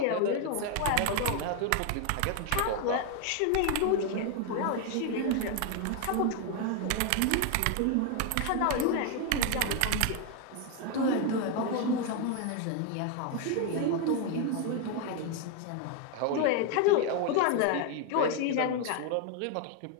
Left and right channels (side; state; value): both; different; correlation 0.01